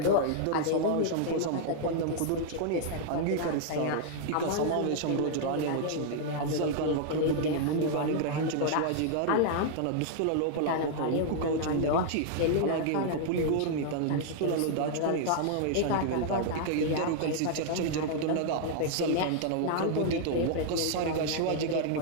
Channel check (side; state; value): both; different; correlation -0.01